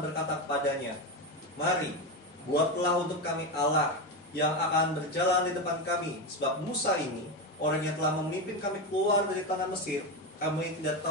kepadanya, mari, buatlah untuk kami Allah yang akan berjalan di depan kami. Sebab Musa ini, orang yang telah memimpin kami keluar dari tanah Mesir, kami tidak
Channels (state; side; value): normal; both; correlation 0.15